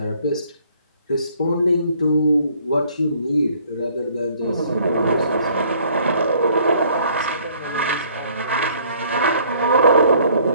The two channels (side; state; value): both; inverted; correlation -0.60